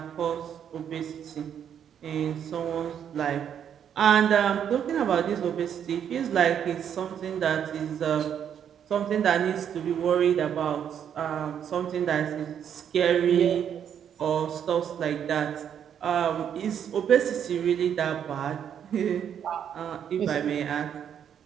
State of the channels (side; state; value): left; quieter; 8.8 dB